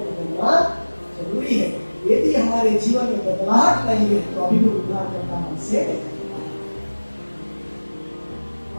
जरूरी है। यदि हमारे जीवन में बदलाहट नहीं है, तो अभी भी उद्धारकर्ता हमसे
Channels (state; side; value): inverted; both; correlation -1.00